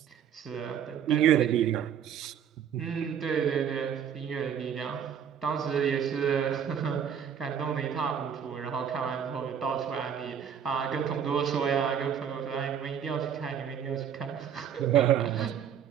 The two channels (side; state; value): left; quieter; 8.4 dB